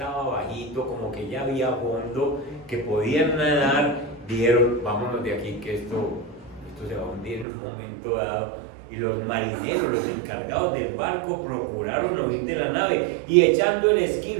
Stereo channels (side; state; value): left; drops out; at 7.5 s